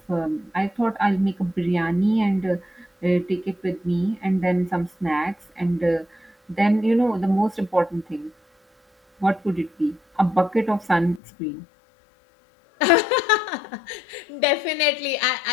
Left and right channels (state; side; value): drops out; right; at 11.2 s